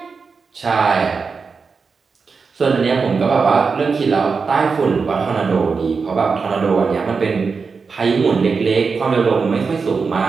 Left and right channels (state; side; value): quieter; left; 5.0 dB